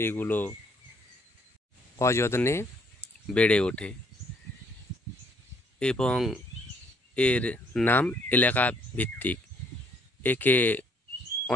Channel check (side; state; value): both; normal; correlation 0.65